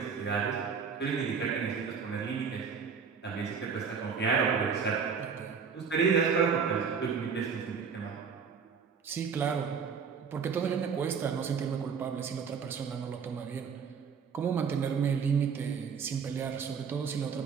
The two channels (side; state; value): left; quieter; 6.2 dB